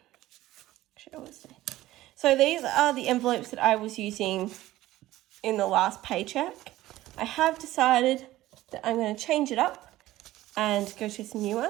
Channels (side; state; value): left; quieter; 15.9 dB